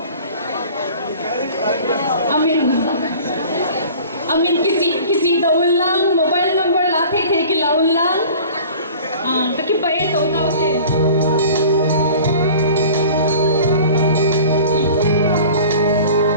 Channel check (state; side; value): inverted; both; correlation -0.44